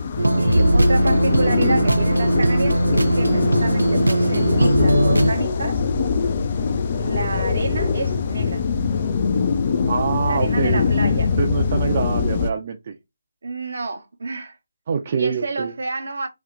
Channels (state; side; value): inverted; both; correlation -0.84